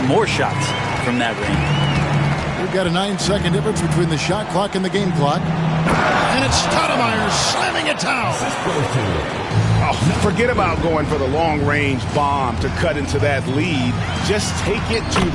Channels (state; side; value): identical; both; correlation 1.00